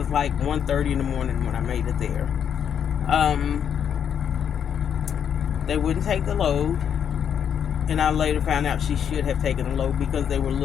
like 1:30 in the morning when I made it there. They wouldn't take the load, and I later found out she should have taken the load because they were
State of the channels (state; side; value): quieter; right; 8.3 dB